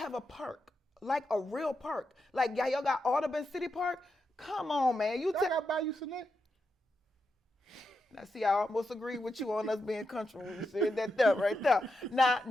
a park, like a real park. Like y'all got Audubon City Park. Come on, man. I got Bayou Select. Now, see, I almost agree with you on us being country when you said that there, right there. Now,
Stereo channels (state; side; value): normal; both; correlation 0.86